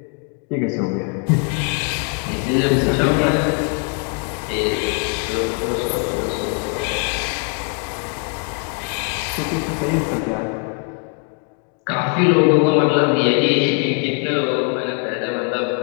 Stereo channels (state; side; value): quieter; right; 38.4 dB